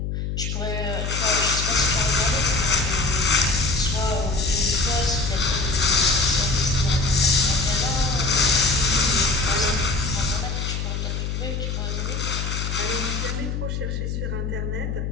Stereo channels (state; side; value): noise; left; hum, 3 dB below the sound